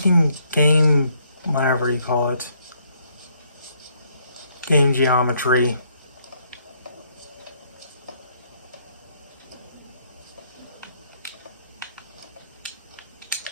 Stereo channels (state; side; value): inverted; both; correlation -0.70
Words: game, whatever you call it. Game geometry.